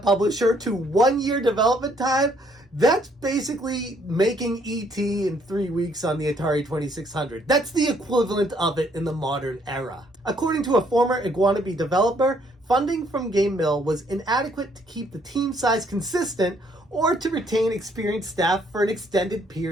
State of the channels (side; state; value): both; normal; correlation 0.67